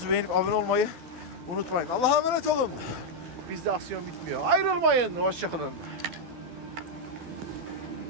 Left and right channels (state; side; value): late; left; 12 ms